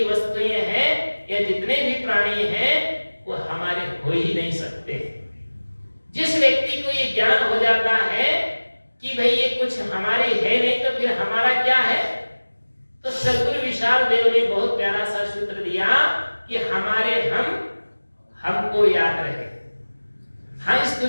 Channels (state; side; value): inverted; both; correlation -1.00